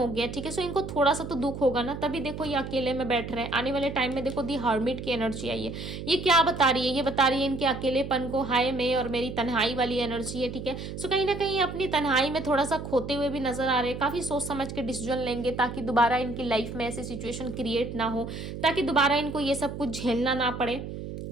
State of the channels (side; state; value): right; noise; hum, 8 dB below the sound